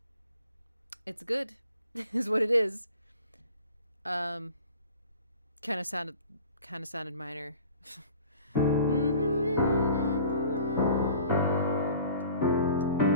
It's good, is what it is. Kind of sounded minor.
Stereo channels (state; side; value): inverted; both; correlation -0.46